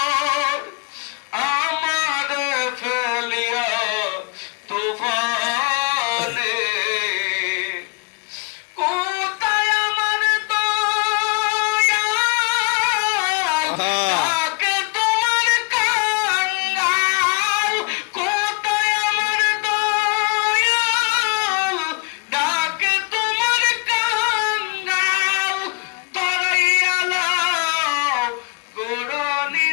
আমার ফেলিয়া তুফানে। কোথায় আমার দয়াল ডাকে তোমার কাঙ্গাল, কোথায় আমার দয়াল ডাকে তোমার কাঙ্গাল। তরাইয়া লাও গুরু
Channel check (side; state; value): right; quieter; 29.8 dB